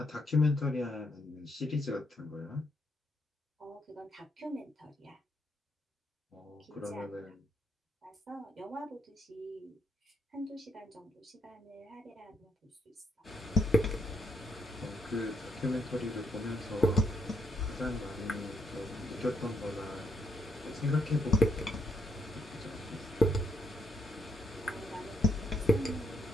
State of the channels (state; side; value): normal; both; correlation 0.75